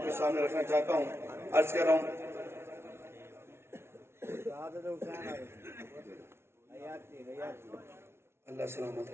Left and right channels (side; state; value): left; late; 0.12 ms